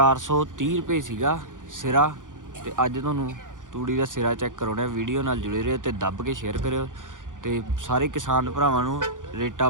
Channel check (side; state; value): left; late; 0.88 ms